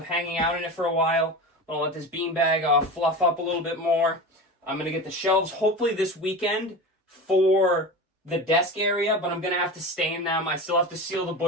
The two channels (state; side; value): normal; both; correlation 0.29